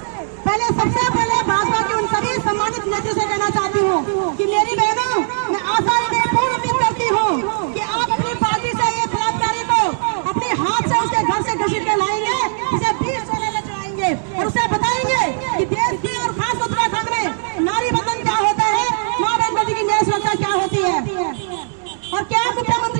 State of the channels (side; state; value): left; silent; digital silence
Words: सबसे पहले भाजपा के उन सभी सम्मानित नेताओं से कहना चाहती हूँ कि मेरी बहनों, मैं आशा पूर्ण उम्मीद करती हूँ कि आप अपनी पार्टी से ये बलात्कारी को अपने हाथ से उसके घर से घसीट के लाएंगे, उसे 20 सोने में चढ़ाएंगे और उसे बताएंगे कि देश की और खास उत्तराखंड में नारी बंधन क्या होता है, माँ बहन बेटी की न्याय सुरक्षा क्या होती है। और क्या